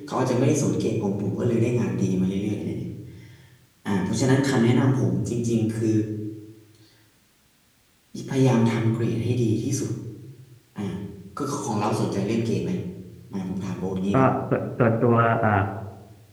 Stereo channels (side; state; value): both; identical; correlation 1.00